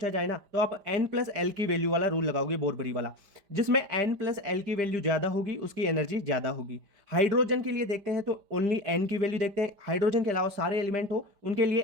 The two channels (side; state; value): left; late; 5.0 ms